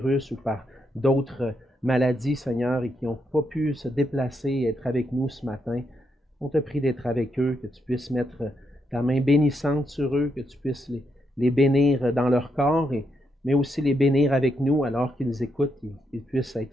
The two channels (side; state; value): both; normal; correlation 0.80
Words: ou par d'autres maladies, Seigneur, et qui n'ont pas pu se déplacer et être avec nous ce matin. On te prie d'être avec eux, que tu puisses mettre ta main bénissante sur eux, que tu puisses les bénir dans leur corps, mais aussi les bénir avec nous alors qu'ils écoutent, qu'ils puissent